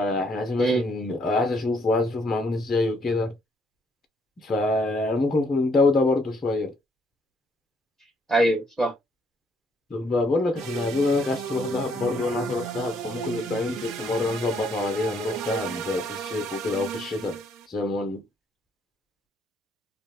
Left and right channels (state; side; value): normal; both; correlation 0.68